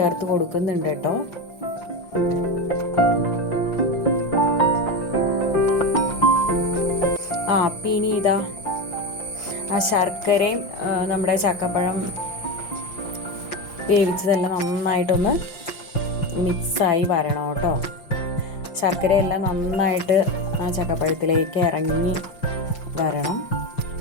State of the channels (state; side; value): late; right; 5.8 ms